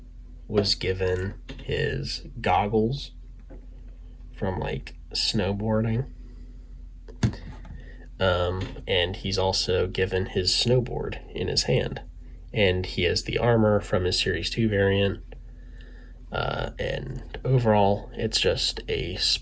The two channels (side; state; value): both; identical; correlation 1.00